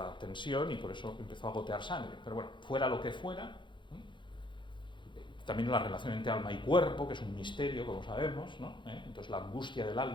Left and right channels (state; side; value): late; right; 0.23 ms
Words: tensión, y por eso empezó a gotear sangre. Pero bueno, fuera lo que fuera, también la relación entre alma y cuerpo, que es un misterio, como sabemos, ¿no? Entonces la angustia del